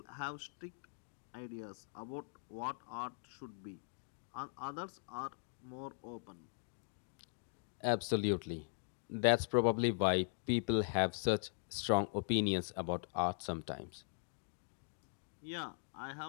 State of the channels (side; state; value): right; silent; digital silence